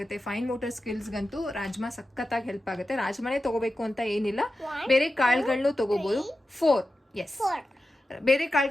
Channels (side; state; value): both; normal; correlation 0.92